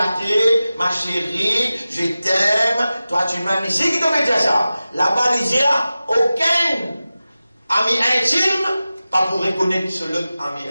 ma chérie, je t'aime, toi tu m'aimes. Ici, qui devait dire ça? Là-bas, il dit, aucun ami intime, pas pour reconnaître ce l'autre ami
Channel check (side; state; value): both; inverted; correlation -0.95